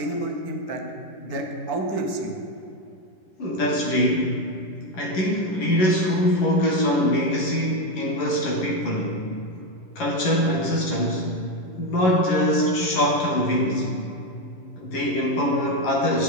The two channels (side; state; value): right; late; 11 ms